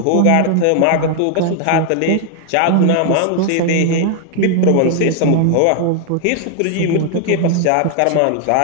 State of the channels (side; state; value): both; different; correlation 0.00